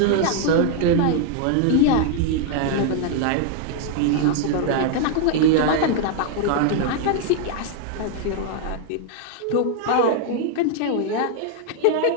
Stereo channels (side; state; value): both; different; correlation 0.00